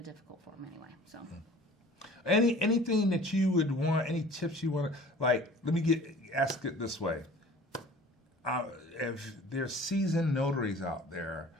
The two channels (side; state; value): both; normal; correlation 0.47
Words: difficult form anyway. So anything that you would want, any tips you want to, like, let me ask it this way. If there's seasoned notaries out there